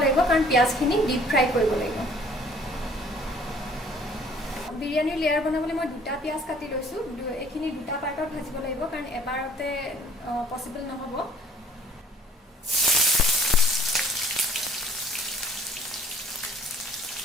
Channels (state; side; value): normal; both; correlation 0.55